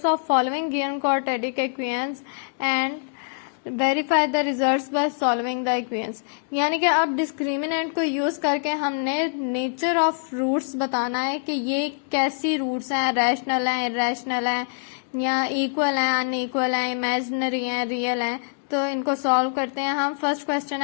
of following given quadratic equations and verify the results by solving the equations. यानी कि अब डिस्क्रिमिनेंट को यूज करके हमने नेचर ऑफ रूट्स बताना है कि ये कैसी रूट्स हैं, रैशनल हैं, इरेशनल हैं, या इक्वल हैं, अनइक्वल हैं, इमेजिनरी हैं, रियल हैं। तो इनको सॉल्व करते हैं हम। फर्स्ट क्वेश्चन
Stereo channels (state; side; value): silent; right; digital silence